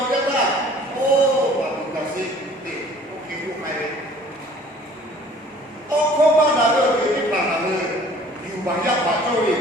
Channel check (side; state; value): both; normal; correlation 0.52